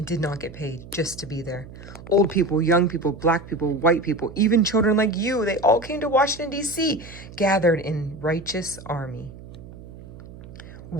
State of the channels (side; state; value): right; noise; hum, 16 dB below the sound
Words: did not get paid just to be there. Old people, young people, black people, white people, even children like you, they all came to Washington, D.C., gathered in righteous army.